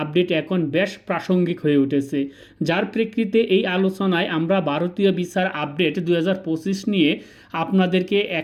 এখন বেশ প্রাসঙ্গিক হয়ে উঠেছে, যার প্রেক্ষিতে এই আলোচনায় আমরা ভারতীয় ভিসার আপডেট 2025 নিয়ে আপনাদেরকে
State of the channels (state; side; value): identical; both; correlation 1.00